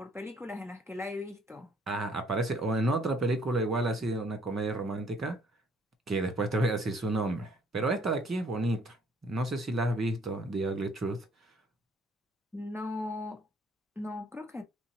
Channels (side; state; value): both; normal; correlation 0.62